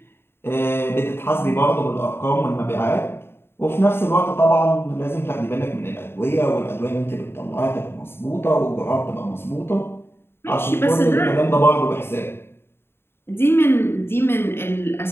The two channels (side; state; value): right; late; 0.11 ms